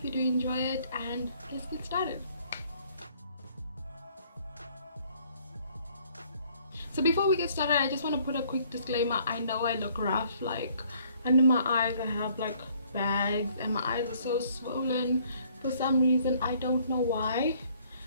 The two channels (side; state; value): both; inverted; correlation -0.62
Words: you do enjoy it, and let's get started. So before we get started, I just want to put a quick disclaimer. I know I look rough, like under my eyes I have like bags and my eyes are so swollen for some reason. I don't know why.